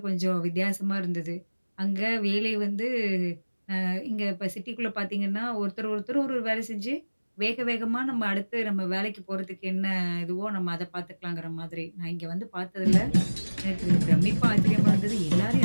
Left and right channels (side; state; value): both; inverted; correlation -1.00